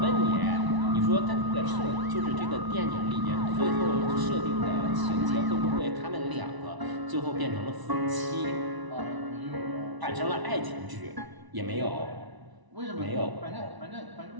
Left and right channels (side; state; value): left; late; 1.0 ms